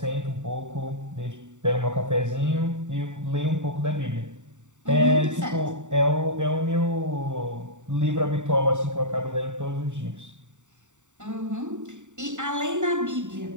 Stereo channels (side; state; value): left; late; 0.85 ms